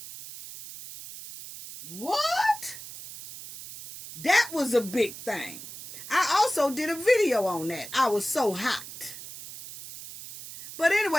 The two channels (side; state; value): right; noise; hiss, 13 dB below the sound